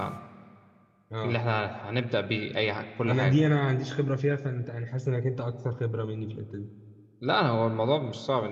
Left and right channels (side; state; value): both; identical; correlation 1.00